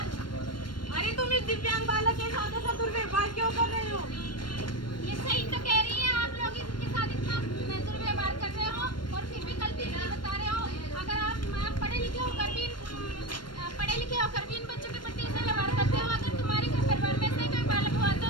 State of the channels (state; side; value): late; right; 0.72 ms